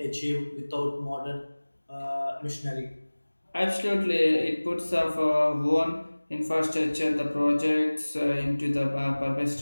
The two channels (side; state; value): both; inverted; correlation -1.00